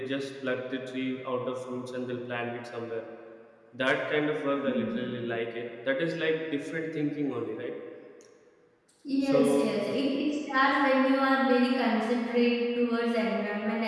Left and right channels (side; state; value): both; identical; correlation 1.00